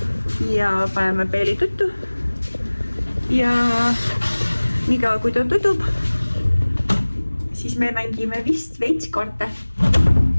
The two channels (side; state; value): both; inverted; correlation -1.00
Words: ja paneme Peili tuttu. Ja niikaua kui ta tutub, siis me mängime vist veits kaarte,